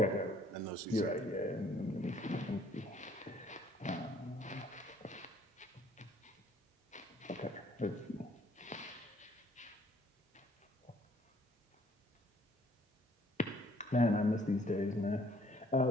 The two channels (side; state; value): both; normal; correlation 0.62